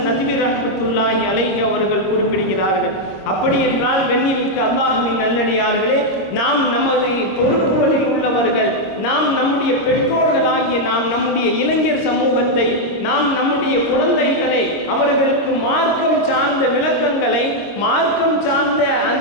நதுவி ரஹ்மத்துல்லாஹி அலைஹி அவர்கள் குறிப்பிடுகிறார்கள். அப்படி என்றால் கண்ணியமிக்க அல்லாஹ்வின் நல்லடியார்களே, நாம் நமது பொறுப்புகளில் உள்ளவர்கள், நாம் நம்முடைய பெற்றோர்களாகிய நாம் நம்முடைய இளைஞர் சமூகத்தை, நாம் நம்முடைய குழந்தைகளை அவர்களுக்கு மார்க்கம் சார்ந்த விளக்கங்களை, மார்க்கம் சார்ந்த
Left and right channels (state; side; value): late; right; 25 ms